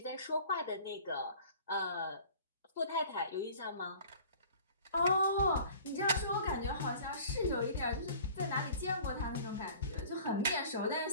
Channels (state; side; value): inverted; both; correlation -0.47